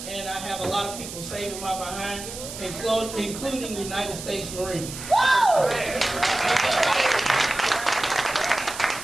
and I have a lot of people saving my behind, including United States Marines.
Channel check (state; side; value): noise; right; hiss, 10 dB below the sound